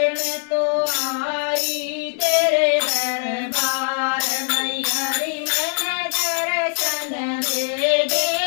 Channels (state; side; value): silent; right; digital silence